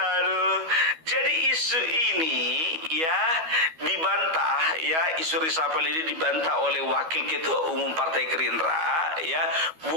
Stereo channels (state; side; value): late; left; 12 ms